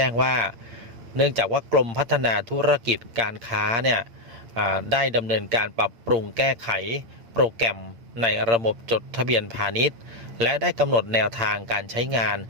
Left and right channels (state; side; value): late; left; 8.7 ms